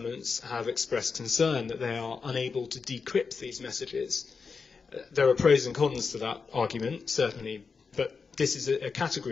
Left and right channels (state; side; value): quieter; right; 5.2 dB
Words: have expressed concern that they are unable to decrypt these messages. There are pros and cons to that argument, certainly, but this is a